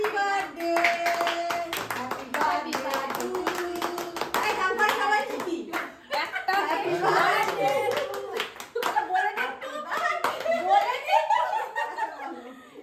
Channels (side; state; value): both; identical; correlation 1.00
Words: birthday, happy birthday to you. এই নাম্বার সবাই ঠিকই। একটা হ্যাপি বার্থডে